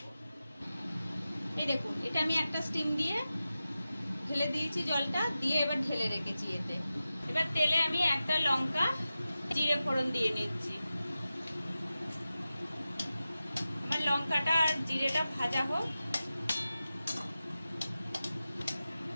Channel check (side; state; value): both; inverted; correlation -0.94